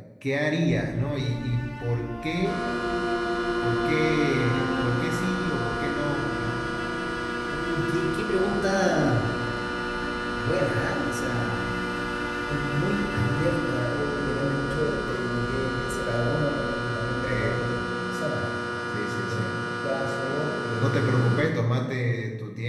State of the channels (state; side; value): identical; both; correlation 1.00